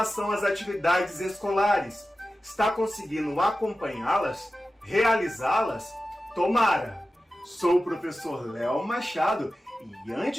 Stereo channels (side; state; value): both; normal; correlation 0.94